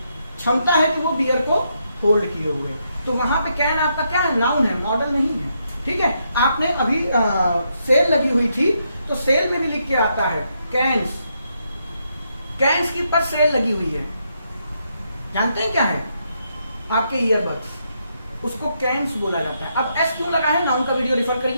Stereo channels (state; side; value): inverted; both; correlation -0.79